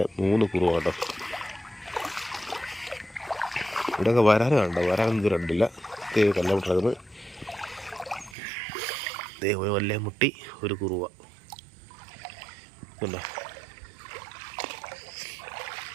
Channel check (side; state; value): left; drops out; at 8.3 s